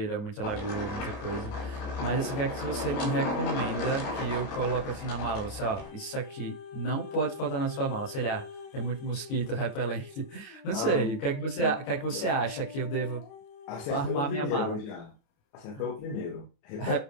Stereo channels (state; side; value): late; right; 28 ms